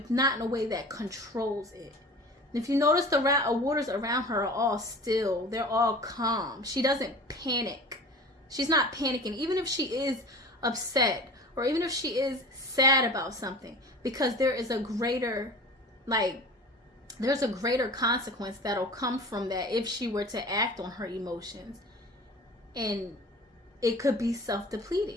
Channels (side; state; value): both; normal; correlation 0.39